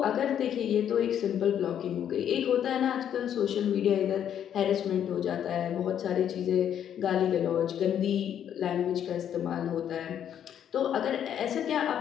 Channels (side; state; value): right; quieter; 9.6 dB